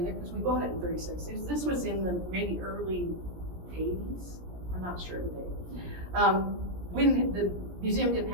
there because we bought it in 36. This was in the maybe early 80s. I'm not sure the date. When the museum didn't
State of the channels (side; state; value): left; late; 17 ms